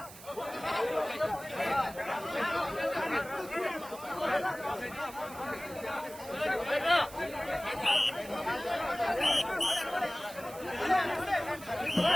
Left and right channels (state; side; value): noise; right; hiss, 17 dB below the sound